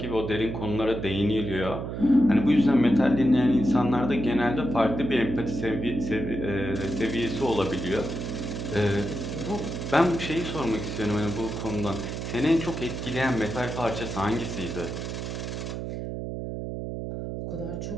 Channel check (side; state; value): right; noise; hum, 5 dB below the sound